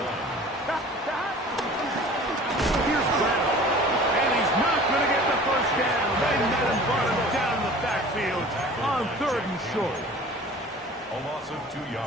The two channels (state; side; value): normal; both; correlation 0.44